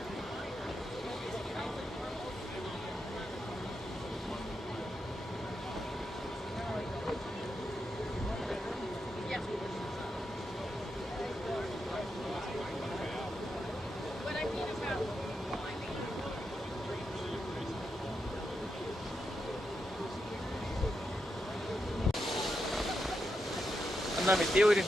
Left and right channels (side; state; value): both; normal; correlation 0.85